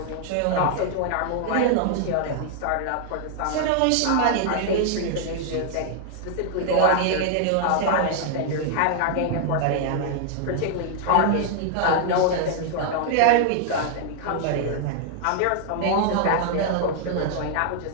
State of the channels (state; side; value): different; both; correlation -0.01